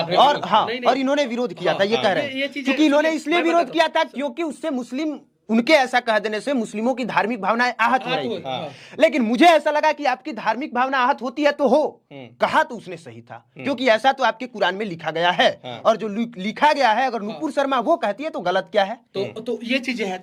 और इन्होंने विरोध किया था। ये कह रहे हैं क्योंकि इन्होंने इसलिए विरोध किया था क्योंकि उससे मुस्लिम, उनके ऐसा कह देने से मुस्लिमों की धार्मिक भावनाएं आहत हो रही थी। लेकिन मुझे ऐसा लगा कि आपकी धार्मिक भावना आहत होती है तो हो, कहा तो उसने सही था, क्योंकि ऐसा तो आपके कुरान में लिखा गया है। और जो लिखा गया है, अगर नुपुर शर्मा वो कहती है तो गलत क्या है? तो ये चीजें हैं,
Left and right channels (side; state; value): both; identical; correlation 1.00